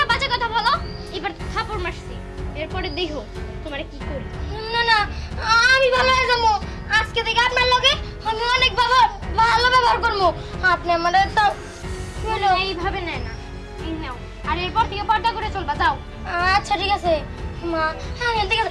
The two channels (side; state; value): both; identical; correlation 1.00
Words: বাজে কথা বলো, এবার থাপড় মারছি, এরপরে দেখো তোমারে কি করি। না না, আমি ভালো হয়ে যাবো। আজকে থেকে আপনার লগে আমি অনেক ভালো ব্যবহার করবো। আপনি আমার এইভাবে নেয় না, এই নাও। আর এরপর থেকে পর্দা করে চলবা, যাও। আচ্ছা ঠিক আছে মা, আমি ঠিক